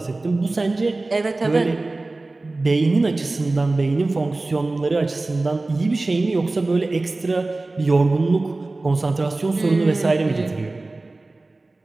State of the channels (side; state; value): left; quieter; 3.1 dB